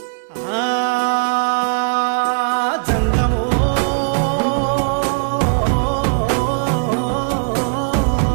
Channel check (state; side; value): silent; left; 58 dB below the other